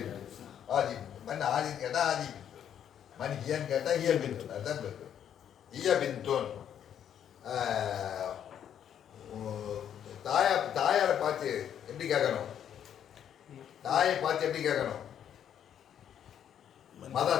ஹாதி மன் ஹாதின்னு கேட்டால் ஹாதி பின்துன், மன் ஹியன்னு கேட்டால் ஹிய பின்துன். அதுதான் பின்துன். ஹிய பின்துன். தாயாரை பார்த்து எப்படி கேட்கணும்? தாயை பார்த்து எப்படி கேட்கணும்?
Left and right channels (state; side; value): quieter; right; 9.4 dB